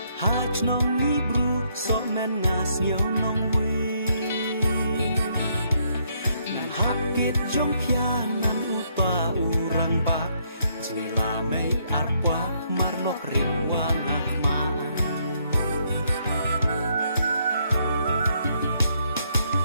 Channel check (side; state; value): both; inverted; correlation -0.72